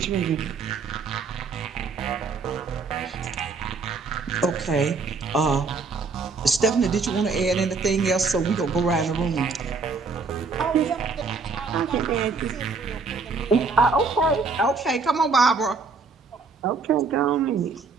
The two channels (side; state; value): left; quieter; 4.5 dB